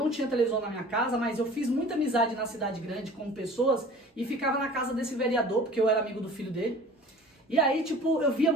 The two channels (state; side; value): normal; both; correlation 0.45